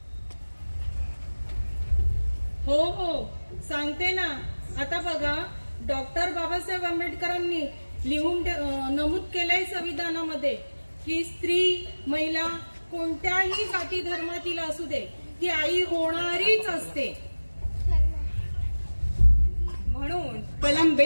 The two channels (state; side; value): inverted; both; correlation -1.00